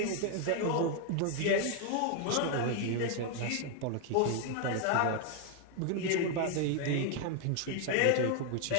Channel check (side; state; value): both; different; correlation 0.00